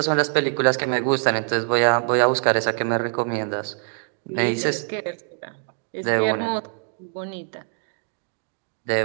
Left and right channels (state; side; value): silent; left; digital silence